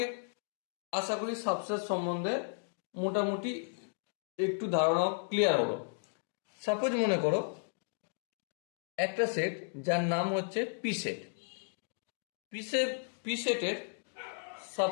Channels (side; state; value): right; silent; digital silence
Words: আশা করি সাবসেট সম্বন্ধে মোটামুটি একটু ধারণা ক্লিয়ার হলো। সাপোজ মনে করো একটা সেট যার নাম হচ্ছে পি সেট। পি সেটের